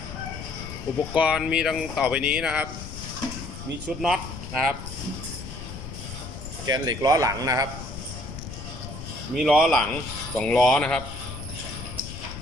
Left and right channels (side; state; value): left; noise; rumble, 10 dB below the sound